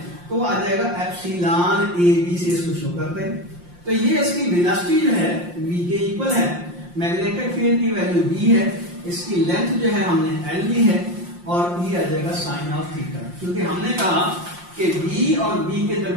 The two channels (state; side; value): late; left; 5.7 ms